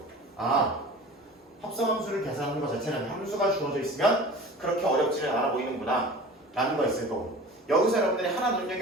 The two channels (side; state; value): both; normal; correlation 0.39